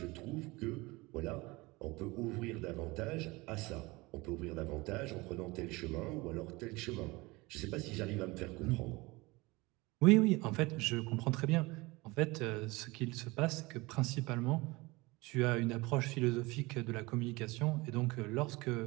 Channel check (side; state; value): left; quieter; 23.0 dB